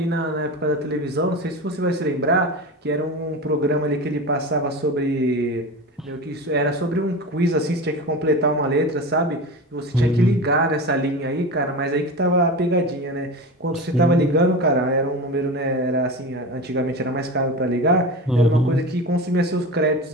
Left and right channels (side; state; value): both; normal; correlation 0.28